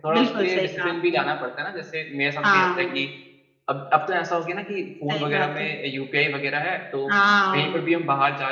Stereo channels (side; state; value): both; identical; correlation 1.00